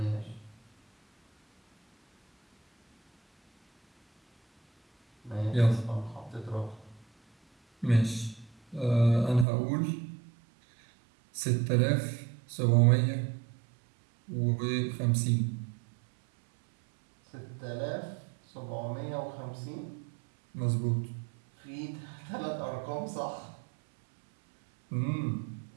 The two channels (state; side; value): drops out; left; at 9.5 s